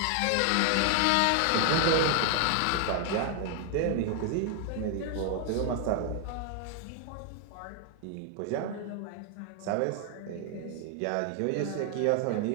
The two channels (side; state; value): both; different; correlation 0.00